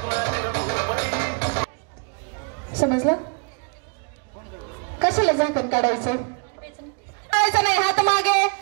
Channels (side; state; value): left; quieter; 36.4 dB